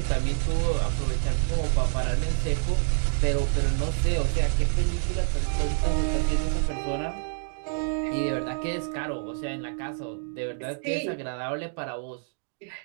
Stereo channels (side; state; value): left; silent; digital silence